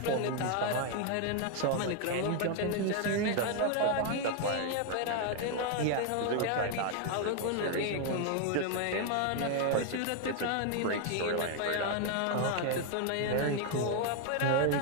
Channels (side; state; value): both; different; correlation 0.00